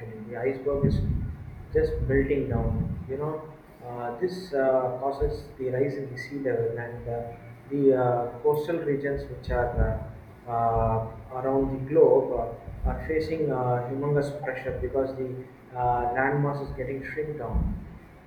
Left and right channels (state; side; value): identical; both; correlation 1.00